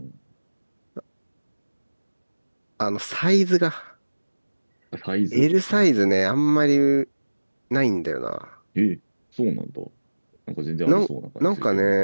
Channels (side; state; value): both; inverted; correlation -1.00